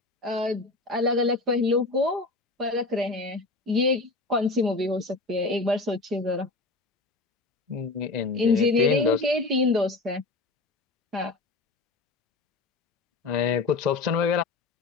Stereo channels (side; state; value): right; quieter; 3.5 dB